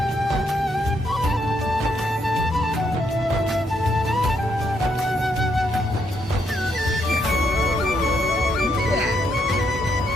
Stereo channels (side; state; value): both; normal; correlation 0.75